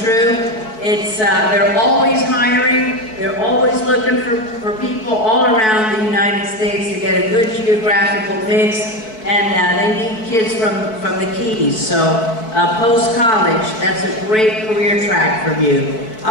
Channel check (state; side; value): late; right; 4.6 ms